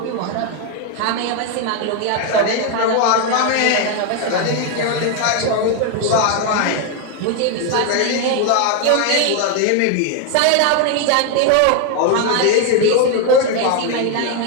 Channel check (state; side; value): different; both; correlation 0.01